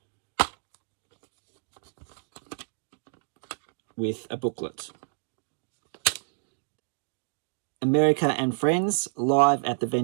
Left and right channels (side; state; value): left; silent; digital silence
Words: With a booklet. America and Friends, live at the